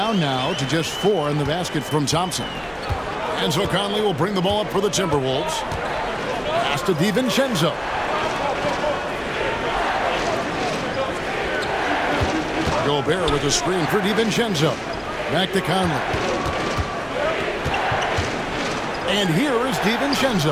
now to just 4 in the basket from Thompson. And so Conley will bring the ball up for the Timberwolves. Pass to DiVincenzo. Gobert with a screen for DiVincenzo. Back to Conley. And here is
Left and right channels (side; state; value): both; identical; correlation 1.00